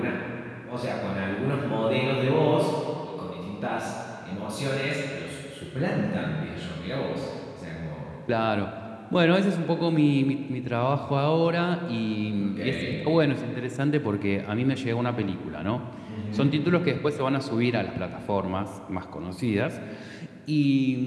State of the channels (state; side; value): identical; both; correlation 1.00